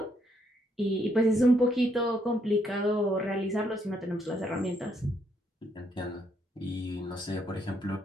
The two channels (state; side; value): normal; both; correlation 0.73